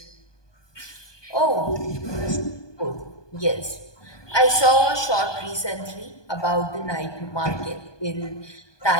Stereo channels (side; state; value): right; late; 1.2 ms